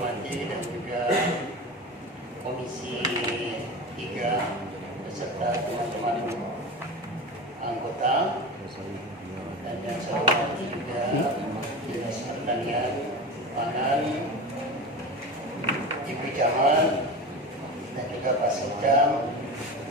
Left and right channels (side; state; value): both; normal; correlation 0.27